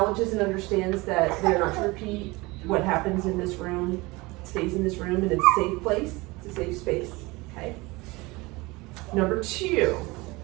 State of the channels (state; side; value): quieter; left; 23.1 dB